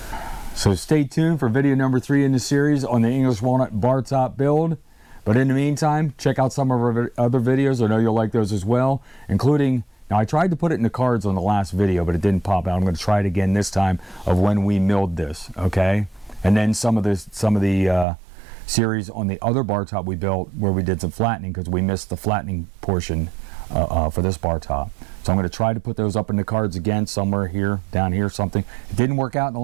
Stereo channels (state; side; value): drops out; left; at 18.1 s